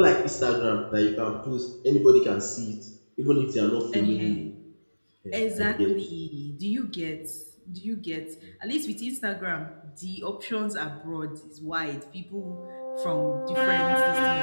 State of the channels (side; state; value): both; inverted; correlation -1.00